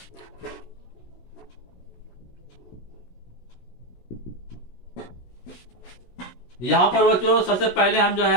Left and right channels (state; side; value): late; right; 16 ms